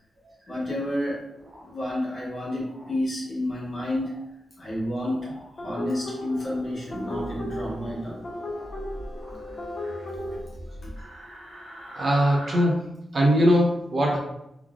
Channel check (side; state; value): both; normal; correlation 0.87